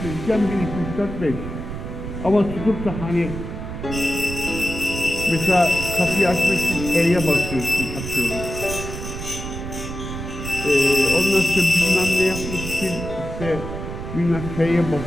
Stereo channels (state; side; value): noise; right; rumble, 7 dB below the sound